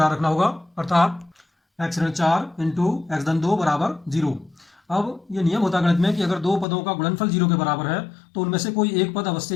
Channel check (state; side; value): drops out; right; at 6.7 s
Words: रखना होगा, अर्थात x ऋण 4 इंटू एक्स धन 2 बराबर 0। अब ये नियम होता है गणित में कि अगर दो पदों का गुणनफल 0 के बराबर है तो उनमें से कोई एक पद